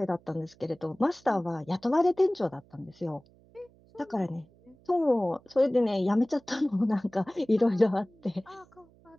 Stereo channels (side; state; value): right; noise; hum, 29 dB below the sound